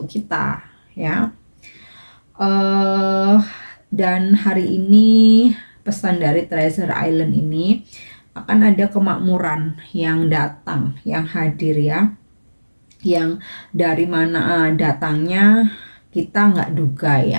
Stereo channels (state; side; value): inverted; both; correlation -1.00